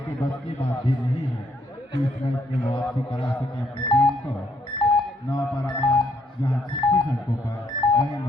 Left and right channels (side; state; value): both; normal; correlation 0.71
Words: बस की बात भी नहीं है कि इस मैच में वापसी करा सके अपनी टीम को। 9 पारामान जहां 36 अंकों पर, वहीं